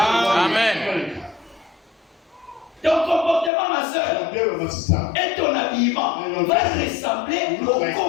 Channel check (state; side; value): drops out; right; at 3.5 s